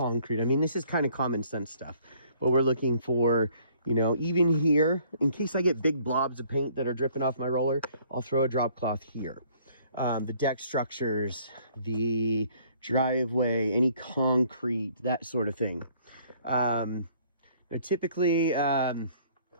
I mean, this is kind of common sense stuff. But we're looking for, even here, in case I get big blobs of paint that are dripping off my roller, I'll throw a drop cloth here. The deck structures, the driveway, any concrete, that sort of thing. Now typically,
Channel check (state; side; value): inverted; both; correlation -0.60